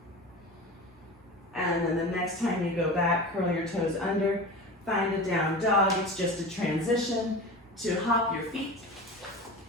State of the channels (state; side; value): normal; both; correlation 0.31